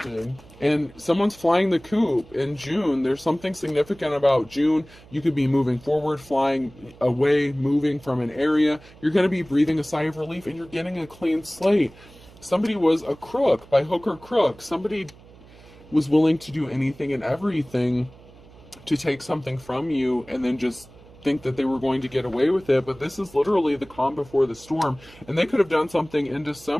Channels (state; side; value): noise; right; hum, 23 dB below the sound